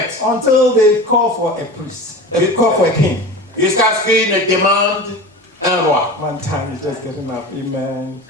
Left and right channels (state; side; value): normal; both; correlation 0.32